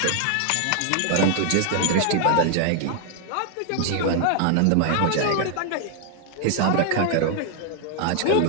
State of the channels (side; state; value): both; different; correlation 0.00